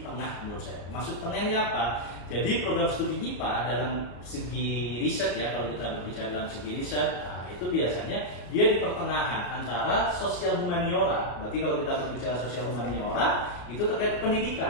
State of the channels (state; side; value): late; right; 34 ms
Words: menurut saya. Maksud tengahnya apa? Jadi program studi IPA dalam segi riset ya, kalau kita berbicara dalam segi riset, itu biasanya dia di pertengahan antara sosial humaniora. Berarti kalau kita berbicara sosial humaniora itu terkait